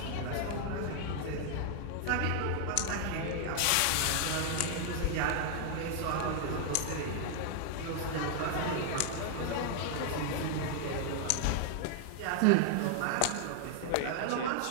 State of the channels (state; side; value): different; both; correlation 0.00